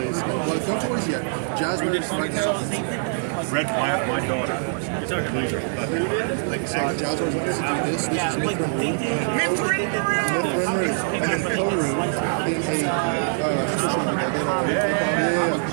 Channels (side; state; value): left; silent; digital silence